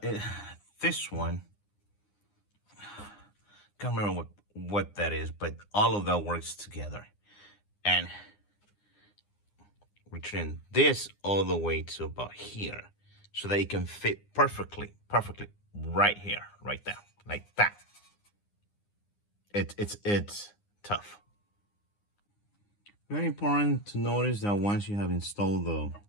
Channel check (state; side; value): late; right; 9.8 ms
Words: one, can't remember what that is, but all of that works together. And return this all the way to about here, so that it can fit perfectly right here, right there, like that. It's tough. Very important to notice that once you have installed the